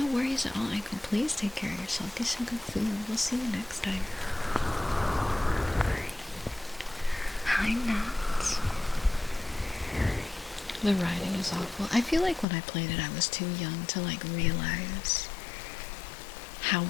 worries at all. Aiko, please take care of yourself. Get some good food. We'll see you next time. Hi, Nuts. The writing is awful. I feel like when I played it, I was too young to like realize how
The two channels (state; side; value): drops out; right; at 12.5 s